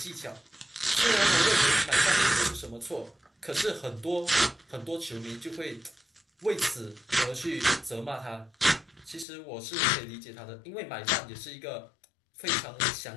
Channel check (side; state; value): right; drops out; at 9.2 s